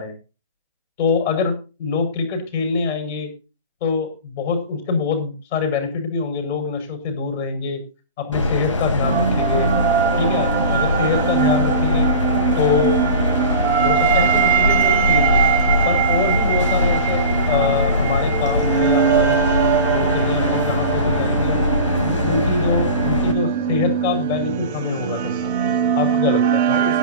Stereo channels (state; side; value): inverted; both; correlation -0.34